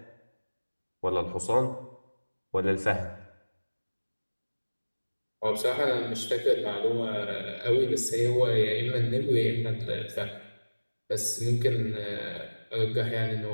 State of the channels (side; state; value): both; inverted; correlation -1.00